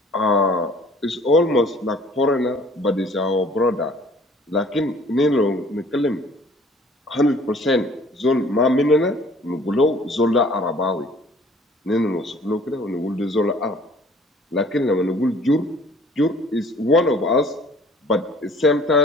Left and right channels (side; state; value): both; normal; correlation 0.53